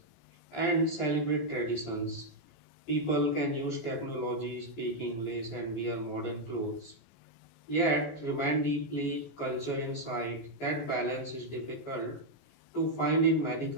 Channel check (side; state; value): right; late; 14 ms